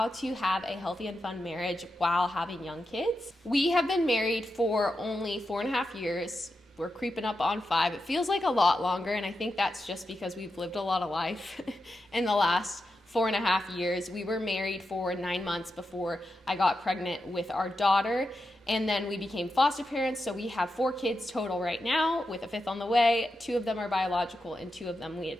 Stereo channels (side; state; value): both; normal; correlation 0.88